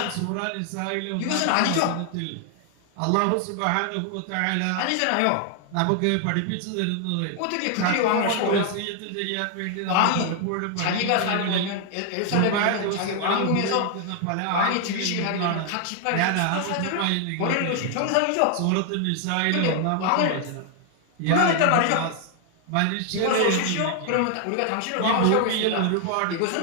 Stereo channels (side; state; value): both; different; correlation 0.00